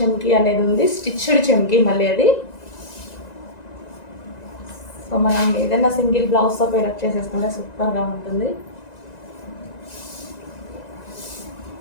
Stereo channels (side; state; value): right; late; 1.9 ms